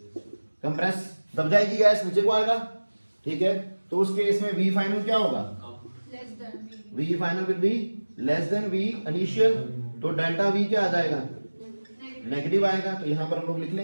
कंप्रेस दब जाएगी गैस, नीचे को आएगा। ठीक है, तो उस केस में वी फाइनल क्या होगा, V final will be less than V initial, तो डेल्टा वी क्या आ जाएगा, नेगेटिव आएगा। तो यहां पर हम लोग लिख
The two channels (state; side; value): inverted; both; correlation -1.00